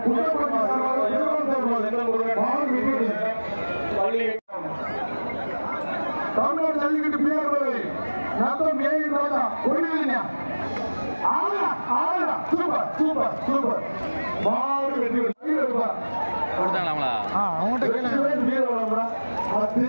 தமிழ்நாடு ஜல்லிக்கட்டு பிஆர் நத்தம் ஏன் ராஜா ஒளிவில்லையா சூப்பர் சூப்பர் சூப்பர் மாடு வெற்றி கொடுத்தாங்களாங்களா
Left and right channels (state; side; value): inverted; both; correlation -1.00